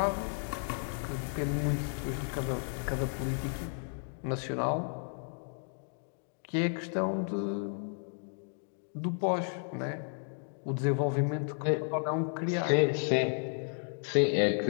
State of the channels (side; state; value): right; silent; 56 dB below the other